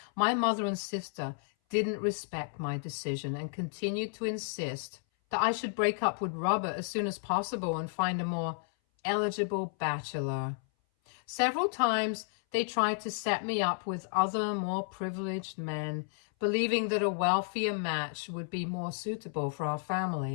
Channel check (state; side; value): silent; right; 56 dB below the other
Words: my mother and sister didn't respect my decision and continued to insist that I should break up with Robert as soon as possible and find a more eligible bachelor. Several times they tried to set me up with other more privileged men, believing that a wealthier match would be more suitable for our